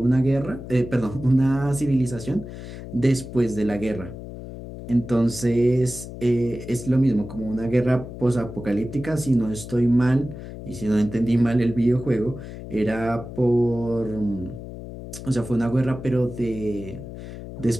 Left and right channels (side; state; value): left; noise; hum, 11 dB below the sound